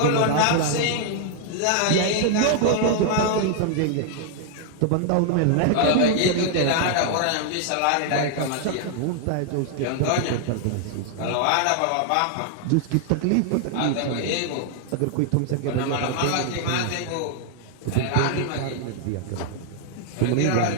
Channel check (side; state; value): both; different; correlation 0.00